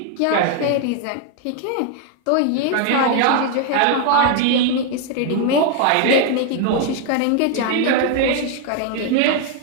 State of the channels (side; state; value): both; different; correlation 0.01